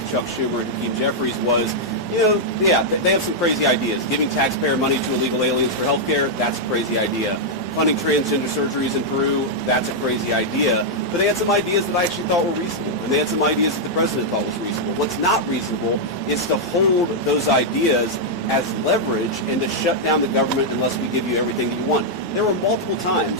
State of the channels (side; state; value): both; normal; correlation -0.05